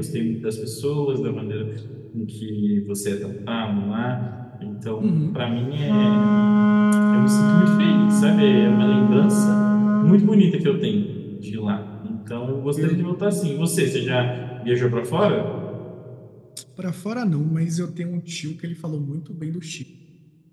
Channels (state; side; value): identical; both; correlation 1.00